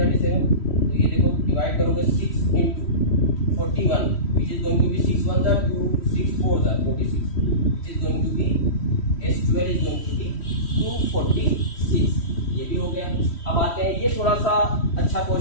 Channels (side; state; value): right; late; 3.1 ms